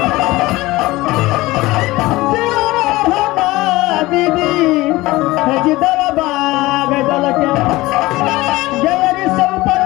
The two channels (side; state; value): right; quieter; 19.4 dB